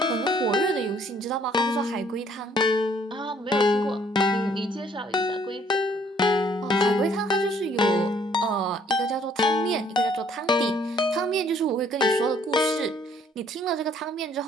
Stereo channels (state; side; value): normal; both; correlation 0.62